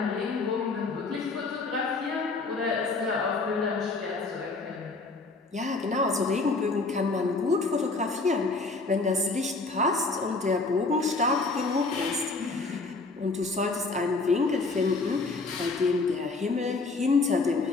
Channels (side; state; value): right; quieter; 3.7 dB